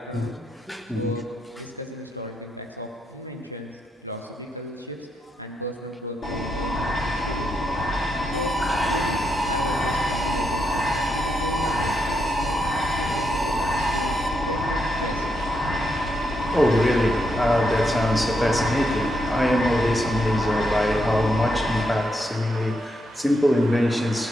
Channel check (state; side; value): normal; both; correlation 0.81